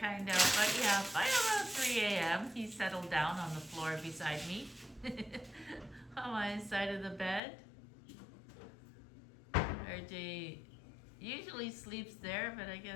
of, but yeah, by around 3 a.m. he settled down on the floor beside me. On my side of the bed. RJ usually sleeps there, but I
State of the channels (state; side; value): drops out; right; at 7.4 s